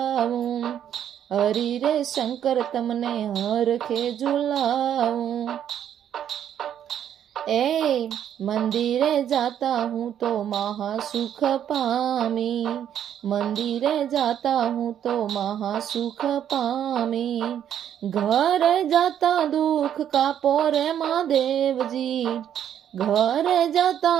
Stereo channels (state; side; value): quieter; left; 9.8 dB